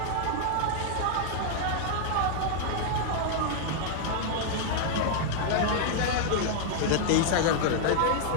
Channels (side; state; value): both; different; correlation 0.00